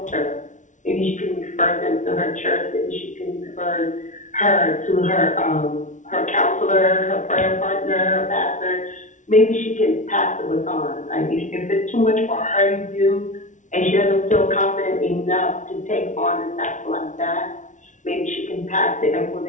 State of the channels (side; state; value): right; late; 0.37 ms